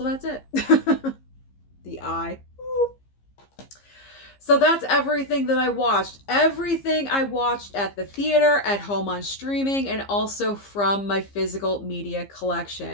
that's it. The eye. So that's everything that I watched. Everything I watched at the theater, at home on streaming, and also from my physical media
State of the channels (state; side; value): late; right; 15 ms